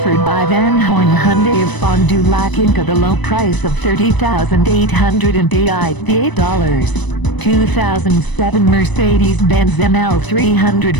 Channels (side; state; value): right; late; 1.0 ms